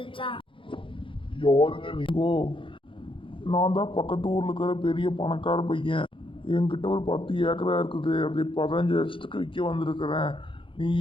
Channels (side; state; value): right; late; 0.25 ms